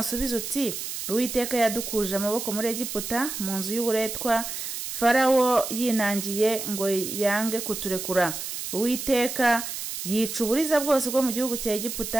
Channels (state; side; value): noise; right; hiss, 6 dB below the sound